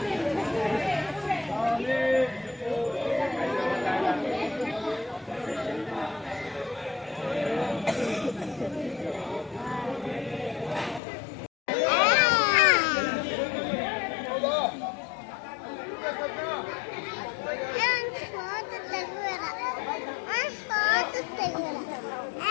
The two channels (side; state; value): right; drops out; at 11.0 s